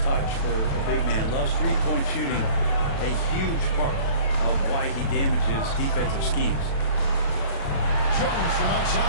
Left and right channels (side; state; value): right; late; 36 ms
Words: for a big man. Loves three-point shooting, a huge part of why he damages defensive schemes. Jones from